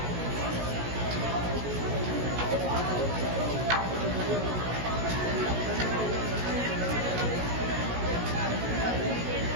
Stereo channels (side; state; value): left; late; 16 ms